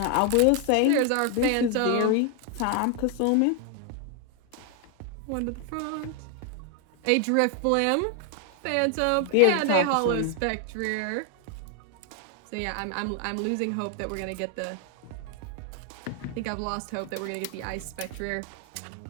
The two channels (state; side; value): different; both; correlation 0.00